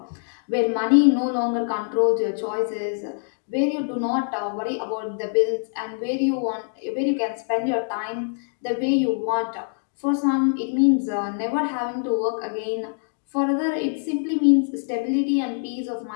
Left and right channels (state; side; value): silent; right; digital silence